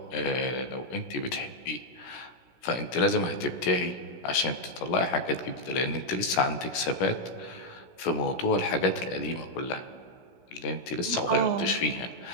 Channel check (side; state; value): right; late; 16 ms